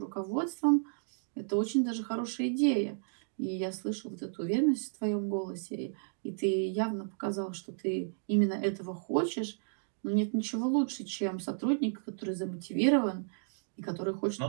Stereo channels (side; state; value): left; silent; digital silence